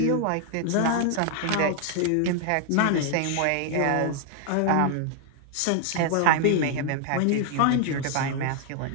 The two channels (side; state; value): both; different; correlation 0.00